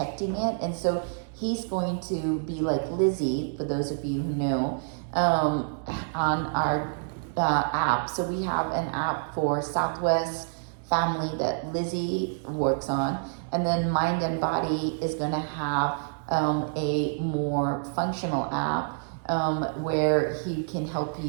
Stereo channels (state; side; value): silent; left; 60 dB below the other